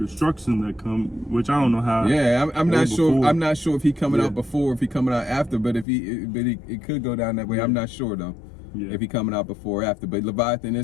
that come, which I don't know how. Yeah, I'm not sure. Before. I'm not sure if he coming out before, if he coming out after. But if it could go down that way. I'm not sure though. Yeah. If he coming out before or after. But Leviathan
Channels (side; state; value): right; drops out; at 5.9 s